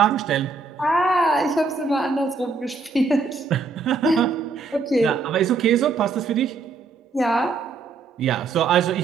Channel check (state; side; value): quieter; left; 4.4 dB